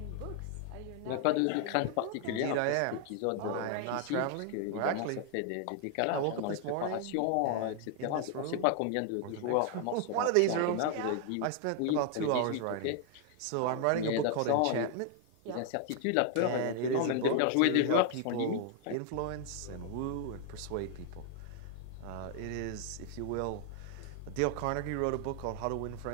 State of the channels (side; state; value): both; different; correlation 0.00